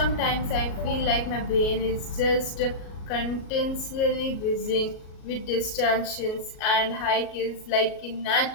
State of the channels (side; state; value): right; late; 37 ms